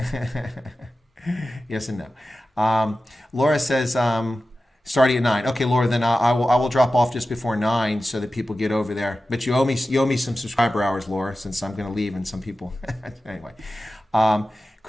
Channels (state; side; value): normal; both; correlation 0.94